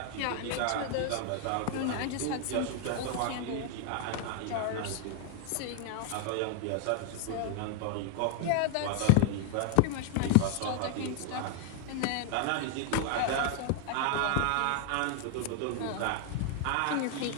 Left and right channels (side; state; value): both; different; correlation 0.00